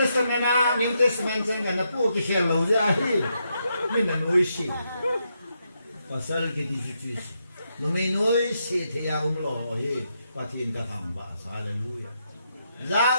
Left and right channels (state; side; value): inverted; both; correlation -0.81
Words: na New Testament sang na po ki hello za hi mi na noi si pasal ki di si no me noi si the ya lo hi patin ka tham ba hallelujah za